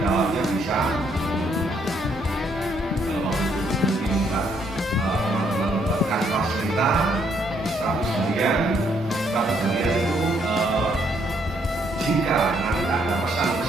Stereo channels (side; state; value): both; normal; correlation 0.71